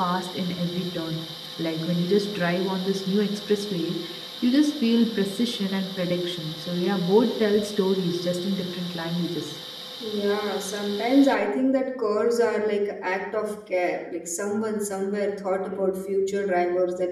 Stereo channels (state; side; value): identical; both; correlation 1.00